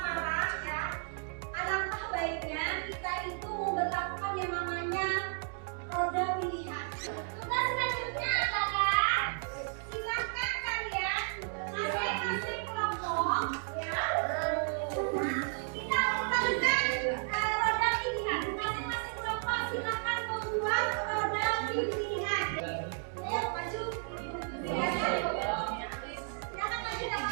ya, alangkah baiknya kita itu memperlakukan yang namanya roda pilihan. Tugas selanjutnya adalah silakan kalian masing-masing kelompok ya. Kita lakukan roda pilihan. Masing-masing kelompok silakan membuat roda pilihan. Ayo maju. Silakan maju tidak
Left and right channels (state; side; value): silent; left; 56 dB below the other